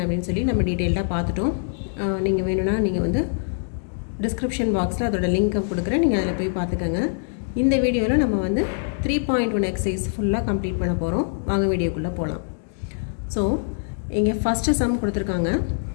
அப்படின்னு சொல்லி நம்ம டீட்டெயில்டாக பார்த்துட்டோம். நீங்கள் வேணும்னா நீங்கள் வந்து டிஸ்கிரிப்ஷன் பாக்ஸில் அதோட லிங்க்கை கொடுக்குறேன், நீங்கள் அதில் போய் பார்த்துக்கோங்க. இந்த வீடியோவில் நம்ம வந்து 3.1 எக்ஸசைஸ் ஃபுல்லாக கம்ப்ளீட் பண்ண போகிறோம். வாங்க வீடியோக்குள்ளே போகலாம். ஸோ இங்கே ஃபஸ்ட்டு சம் கொடுத்துருக்காங்க.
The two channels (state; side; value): silent; right; digital silence